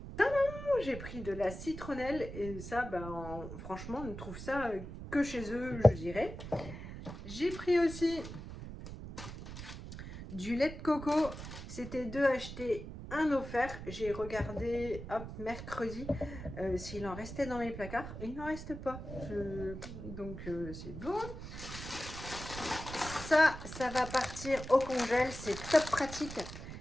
J'ai pris de la citronnelle et ça, ben, franchement, on ne trouve ça que chez eux, je dirais. J'ai pris aussi du lait de coco. C'était 2 achetés, 1 offert. J'ai regardé, hop, mercredi, s'il en restait dans mes placards. Il n'en reste pas. Donc, c'est bon. Ça va partir au congèle. C'est top pratique.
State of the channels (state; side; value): noise; right; rumble, 10 dB below the sound